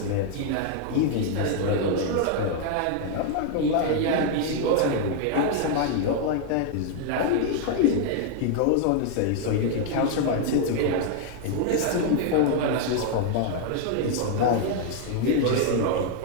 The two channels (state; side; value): different; both; correlation 0.00